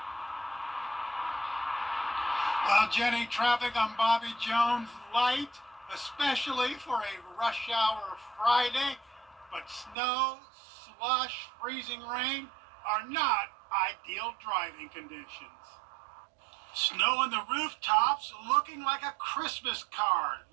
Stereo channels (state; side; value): drops out; left; at 10.0 s